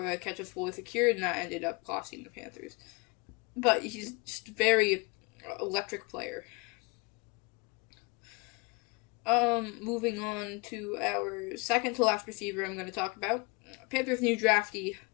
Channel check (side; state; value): right; quieter; 28.8 dB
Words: the catch was fully secured, and that ended up costing the Panthers. But he's just a very electric player. Moving on to our second to last receiver I'm going to talk about. Panthers' new draftee,